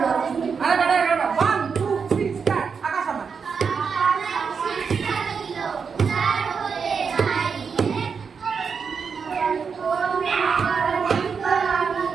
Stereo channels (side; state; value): left; quieter; 5.9 dB